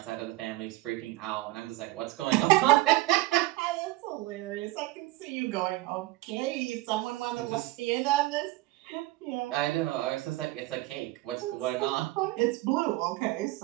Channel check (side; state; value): left; quieter; 19.0 dB